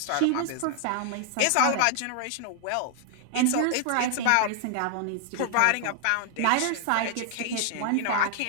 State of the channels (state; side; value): different; both; correlation 0.00